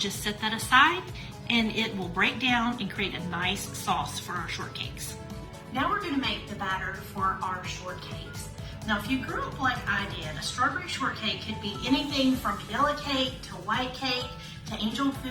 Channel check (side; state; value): both; identical; correlation 1.00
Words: set that aside, and it will break down and create a nice sauce for our shortcakes. Now we're going to make the batter for our shortcakes. Now if you grew up like I did, a strawberry shortcake could be anything from yellow cake to white cake to angel